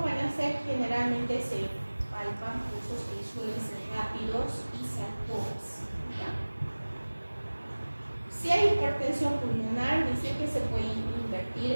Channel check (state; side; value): inverted; both; correlation -1.00